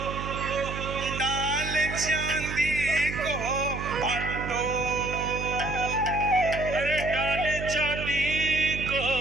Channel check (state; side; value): noise; right; hum, 6 dB below the sound